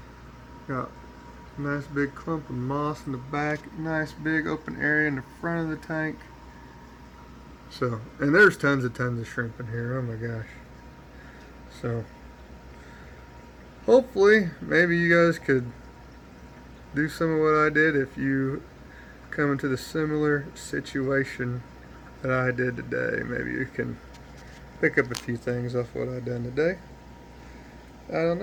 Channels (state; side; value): identical; both; correlation 1.00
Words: Got a nice big clump of moss in the back. Nice big open area in the front of the tank. So, and there's tons of shrimp in here. Oh my gosh. So, hopefully, maybe you guys could do some of what I did if you come into the similar situation that I did today. Maybe you can pick up a few things off what I done today. I don't